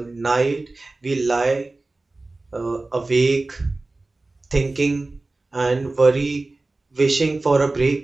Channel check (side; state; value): left; quieter; 3.2 dB